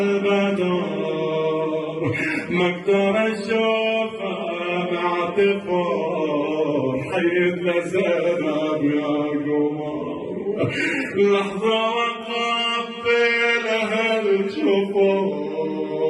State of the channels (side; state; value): both; identical; correlation 1.00